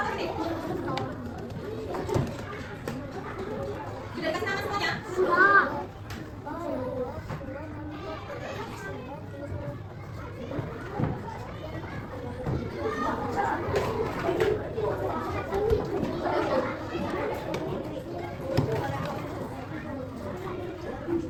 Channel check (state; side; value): identical; both; correlation 1.00